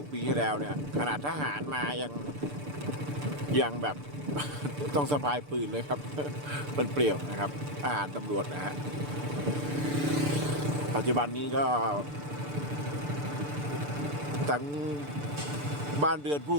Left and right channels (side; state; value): left; late; 6.8 ms